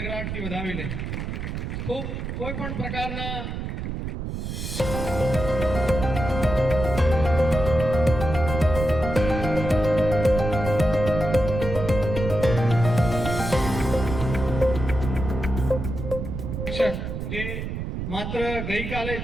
વધાવી લે. ખૂબ કોઈ પણ પ્રકારના જે માત્ર ગઈકાલે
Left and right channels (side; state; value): right; noise; rumble, 5 dB below the sound